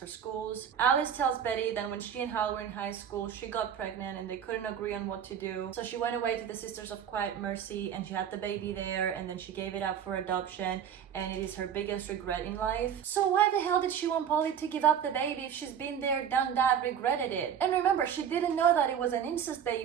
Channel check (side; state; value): left; quieter; 8.5 dB